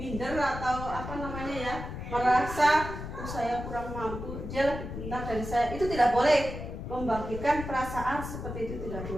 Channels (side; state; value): left; noise; rumble, 8 dB below the sound